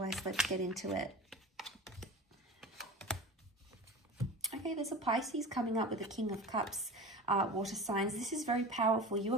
let's get into it. Okay, there's a Pisces coming up with the King of Cups, water signs. This is very powerful. You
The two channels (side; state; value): both; normal; correlation 0.32